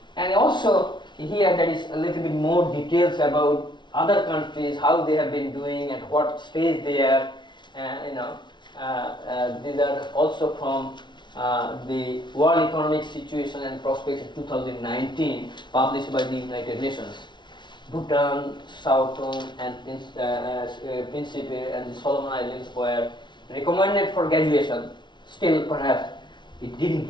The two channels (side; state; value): right; late; 0.22 ms